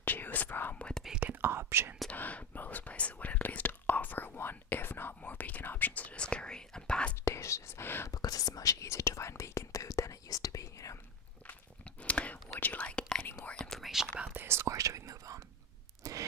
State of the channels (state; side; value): normal; both; correlation 0.19